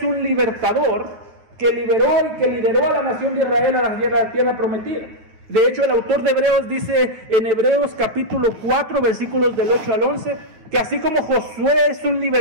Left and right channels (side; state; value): left; late; 9.4 ms